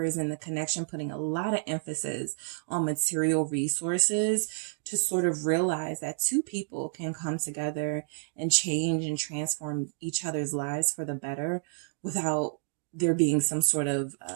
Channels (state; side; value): silent; left; digital silence